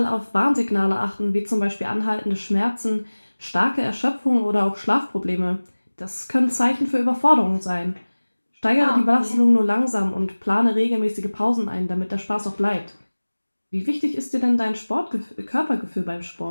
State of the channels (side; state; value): both; inverted; correlation -1.00